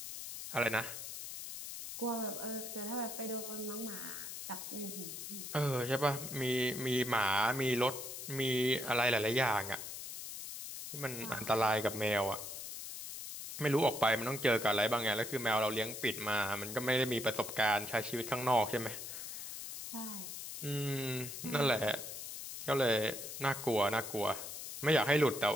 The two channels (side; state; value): left; noise; hiss, 8 dB below the sound